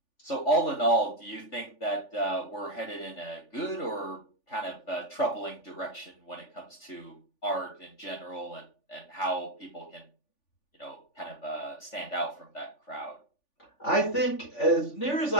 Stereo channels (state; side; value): late; right; 3.5 ms